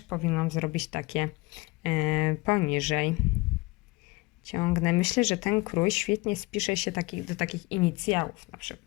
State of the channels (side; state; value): right; quieter; 23.8 dB